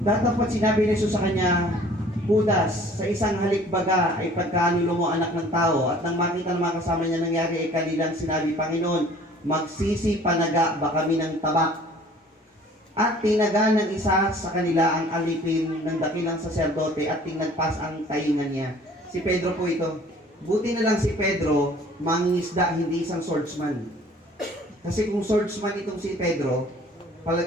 Datapat sinabi ni Jesus sa kanya, Judas, sa isang halikbaga ay pagkanulo mo anak ng tao. At nang makita ng mga kasama niya nangyari ay kanilang sinabi, Panginoon, magsisi panaga ba kami ng tabak? At tinaga ng isa sa kanila ang alipin ng dakilang saserdote at tinagpas ang taingan niya. Si Pedro po ito. Buti na lang si Pedro, mangingisda, hindi isang swordsman. Kasi kung swordsman itong si Pedro,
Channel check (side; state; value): both; normal; correlation 0.51